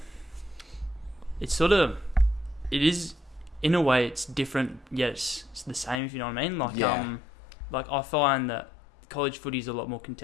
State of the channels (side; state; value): right; drops out; at 6.0 s